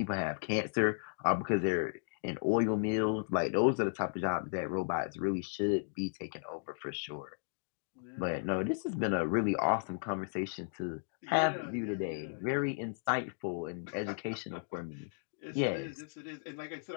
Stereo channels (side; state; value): right; silent; digital silence